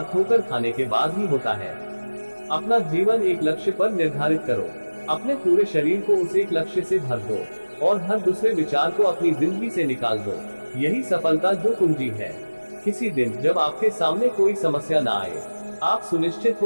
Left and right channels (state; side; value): inverted; both; correlation -1.00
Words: ठोकर खाने के बाद ही होता है। अपना जीवन एक लक्ष्य पर निर्धारित करो। अपने पूरे शरीर को उस एक लक्ष्य से भर दो और हर दूसरे विचार को अपनी जिंदगी से निकाल दो। यही सफलता जो कुंजी है। किसी दिन जब आपके सामने कोई समस्या ना आए, आप सुनिश्चित